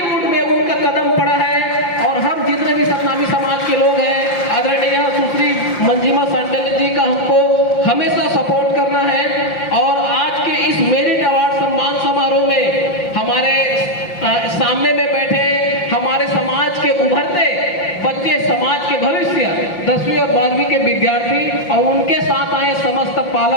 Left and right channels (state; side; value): late; right; 5.7 ms